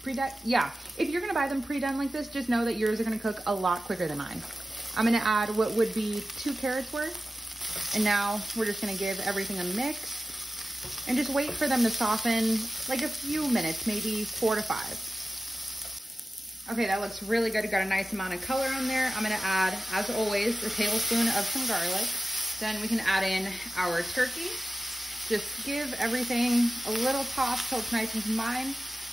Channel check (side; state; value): both; normal; correlation 0.94